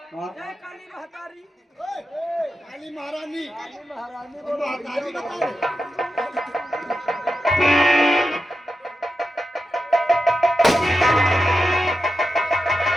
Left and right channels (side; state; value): both; normal; correlation 0.90